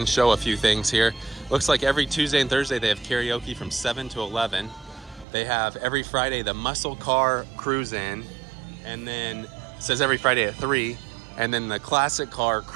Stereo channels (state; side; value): drops out; left; at 5.2 s